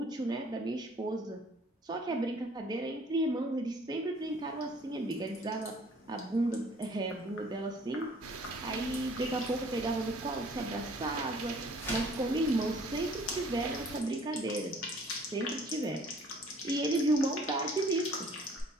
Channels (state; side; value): normal; both; correlation 0.55